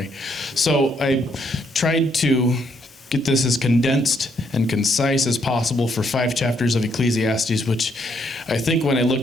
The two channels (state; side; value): normal; both; correlation 0.73